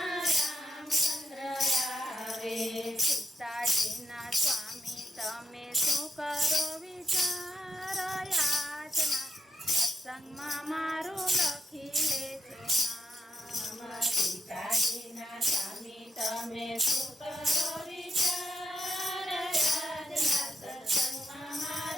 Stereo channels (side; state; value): both; normal; correlation 0.84